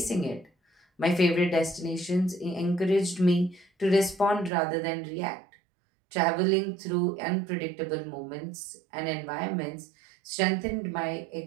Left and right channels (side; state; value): left; drops out; at 4.5 s